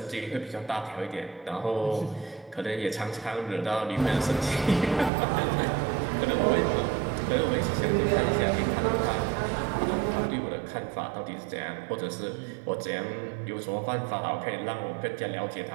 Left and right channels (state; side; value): drops out; left; at 5.1 s